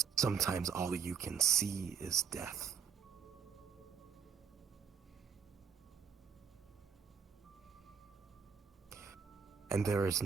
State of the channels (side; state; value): left; quieter; 6.9 dB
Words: sometimes all you can see is death. And there is